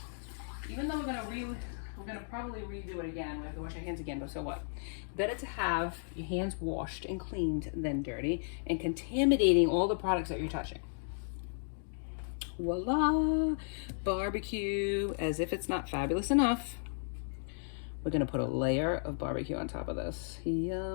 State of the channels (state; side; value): silent; right; digital silence